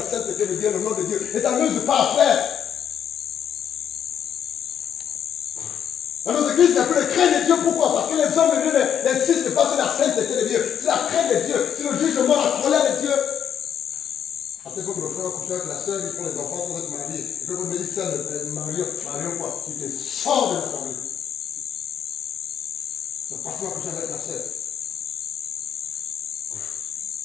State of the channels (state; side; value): quieter; right; 8.8 dB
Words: sainteté de Dieu, le nom de Dieu. Ne t'amuse pas, frère. Dans nos églises, il n'y a plus de crainte de Dieu. Pourquoi? Parce que les hommes de Dieu n'insistent pas sur la sainteté de Dieu, sur la crainte de Dieu, sur le jugement, la colère de Dieu. Après, quand le frère couche avec la soeur, ils font les enfants sans être mariés. Et puis, quand ils disent ça, Marion quoi? Il te sort de la famille. C'est pas toi coucher avec la soeur.